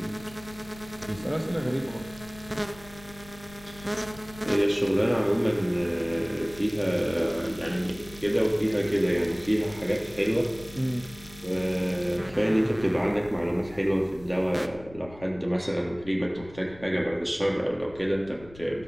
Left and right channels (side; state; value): left; noise; rumble, 19 dB below the sound